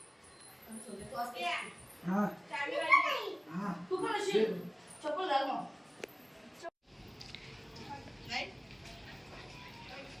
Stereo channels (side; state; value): both; identical; correlation 1.00